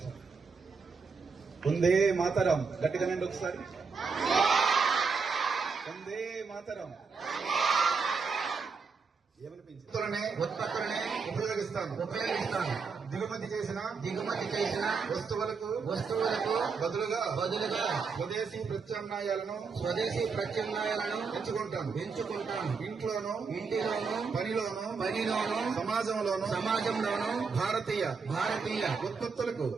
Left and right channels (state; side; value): quieter; left; 5.0 dB